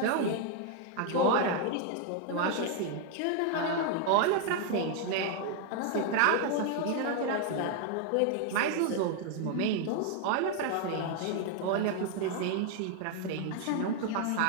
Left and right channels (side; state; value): both; different; correlation 0.00